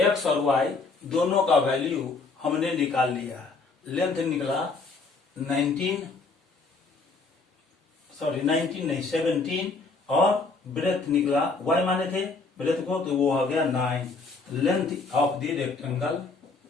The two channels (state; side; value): quieter; right; 4.0 dB